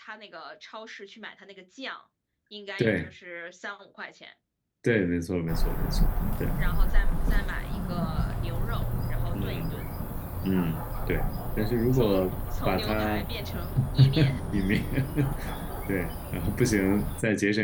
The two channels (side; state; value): both; identical; correlation 1.00